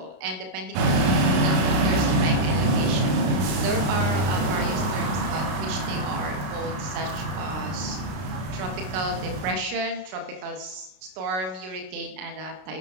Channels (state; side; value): late; left; 32 ms